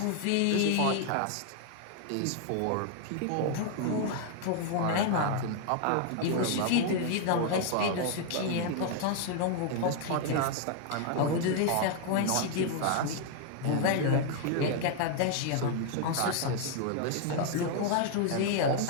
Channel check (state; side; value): different; both; correlation 0.00